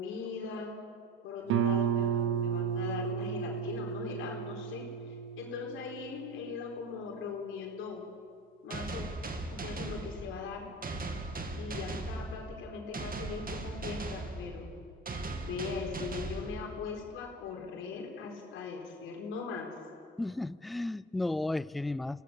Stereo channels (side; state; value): both; normal; correlation 0.32